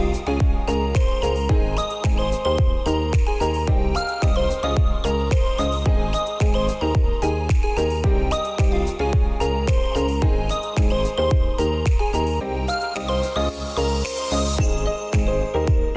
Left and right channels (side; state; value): both; identical; correlation 1.00